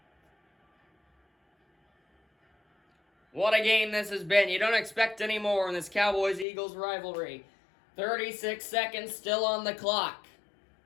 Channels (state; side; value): drops out; right; at 6.5 s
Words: What a game this has been. You don't expect any more in this Cowboys-Eagles rivalry. 36 seconds still on the clock.